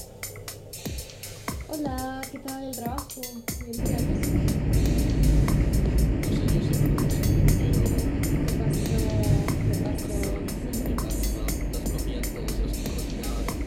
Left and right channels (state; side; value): identical; both; correlation 1.00